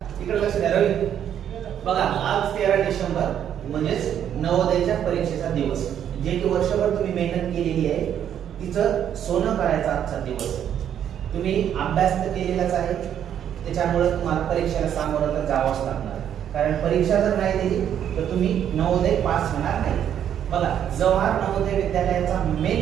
इकडे लक्ष द्या रवी. बघा आज 13 डिसेंबर म्हणजेच नवोदयाच्या परीक्षेचा दिवस. जे की वर्षभर तुम्ही मेहनत केलेली आहे तिचं सोनं करायचा आजचा दिवस. तुम्ही अभ्यास तर केलेलाच आहे, त्याच्यामुळे तुम्हाला परीक्षेला सामोरं तर जावंच लागणार. कारण परीक्षा जर नाही दिली तर तुम्ही नवोदय पास होणार नाही. बघा जवाहर नवोदय विद्यालयाचा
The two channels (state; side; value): quieter; left; 9.6 dB